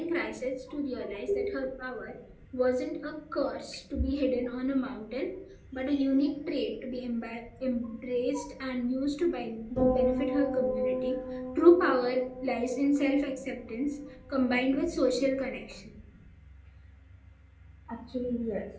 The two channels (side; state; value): both; identical; correlation 1.00